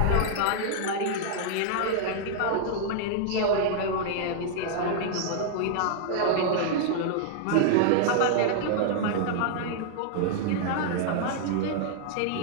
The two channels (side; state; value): both; different; correlation -0.01